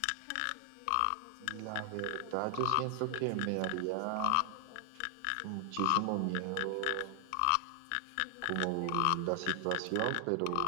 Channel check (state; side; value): different; both; correlation 0.00